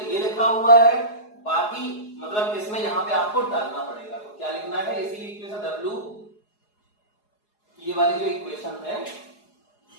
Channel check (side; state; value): right; late; 4.8 ms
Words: ये लिखा हुआ है, बाकी मतलब इसमें यहां पे आपको डालना पड़ेगा। तो क्या लिखना है, इसी इक्वेशन W, ये वाली जो इक्वेशन है